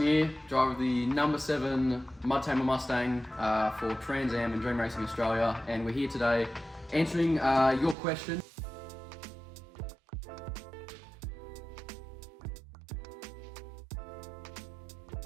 driver of the number 7 MUDTAMER Mustang for Trans Am and Dream Racing Australia, and we're here today answering your question.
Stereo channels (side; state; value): left; drops out; at 8.0 s